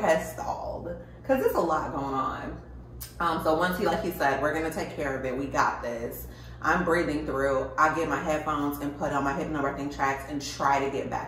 has stalled because there's a lot going on. So once like he said, we're gonna take care of it. We got this. I'm breathing through. I get my headphones and put on my Hypnobirthing tracks and try to get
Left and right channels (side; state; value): both; identical; correlation 1.00